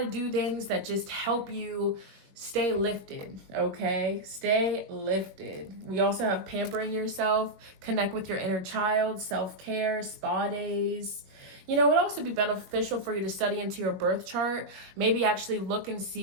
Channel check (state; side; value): late; left; 21 ms